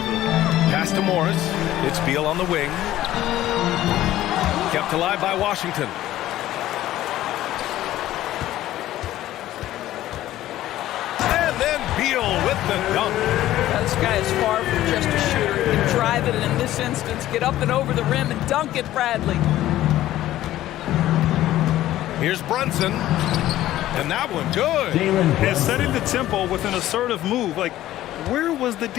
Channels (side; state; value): right; quieter; 14.2 dB